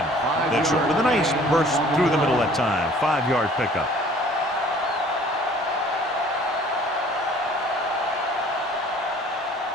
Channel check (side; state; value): both; normal; correlation 0.52